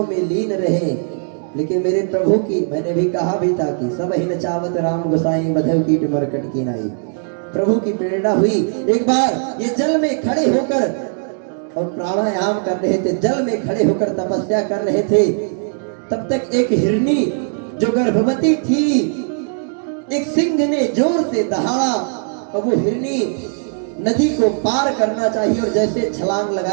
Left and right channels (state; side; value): silent; left; digital silence